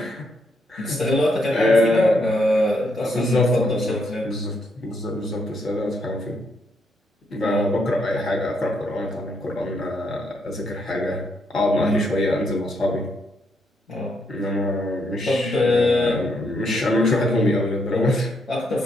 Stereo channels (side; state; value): both; normal; correlation 0.76